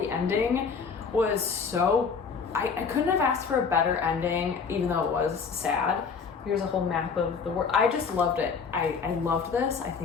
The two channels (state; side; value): quieter; right; 5.7 dB